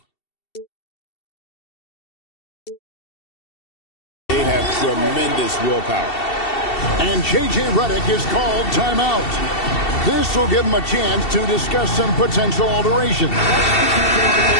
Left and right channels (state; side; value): late; right; 2.7 ms